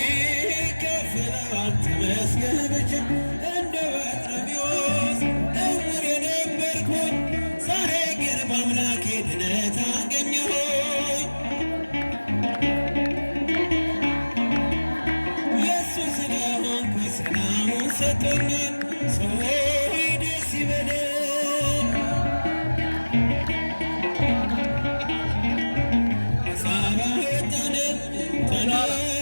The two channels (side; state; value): both; inverted; correlation -1.00